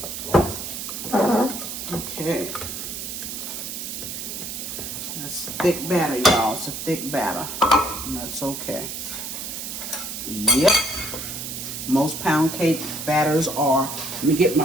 Okay, that's thick batter, y'all. It's a thick batter, and that's okay. Yep, most pound cake batters are. Let me get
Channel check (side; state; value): right; noise; hiss, 6 dB below the sound